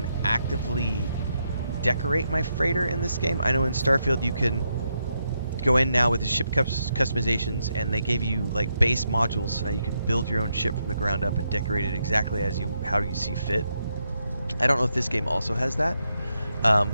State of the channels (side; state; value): both; inverted; correlation -0.81